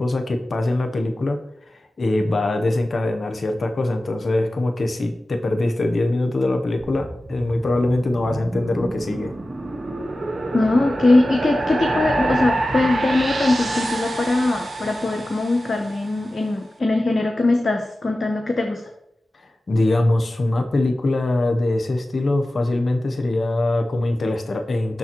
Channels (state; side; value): normal; both; correlation 0.95